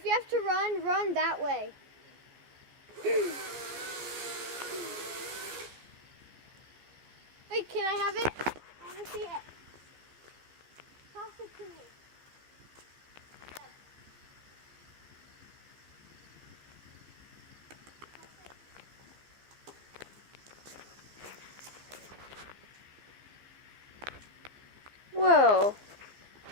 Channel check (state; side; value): late; left; 15 ms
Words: you have to run that way. Wait, can I have it? I want to see it. Toss it to me. Dad. Whoa.